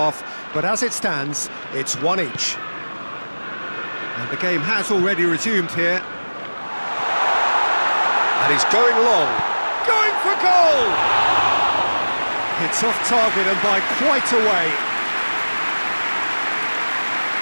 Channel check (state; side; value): inverted; both; correlation -1.00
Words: but as it stands, it's one each. And the game has already resumed here. And he's going long. Going for goal! It's off target and by quite a way.